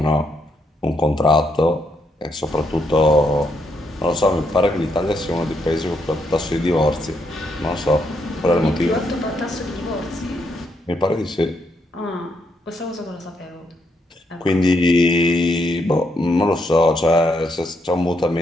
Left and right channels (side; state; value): both; normal; correlation 0.77